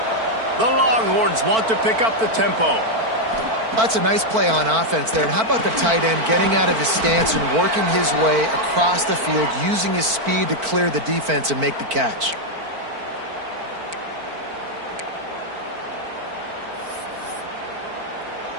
The Longhorns want to pick up the tempo. That's a nice play on offense there. And how about the tight end getting out of his stance and working his way across the field, using his speed to clear the defense and make the catch.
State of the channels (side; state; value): left; late; 4.5 ms